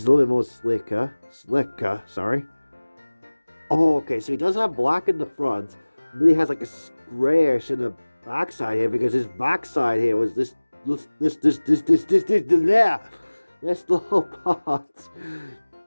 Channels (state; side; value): inverted; both; correlation -1.00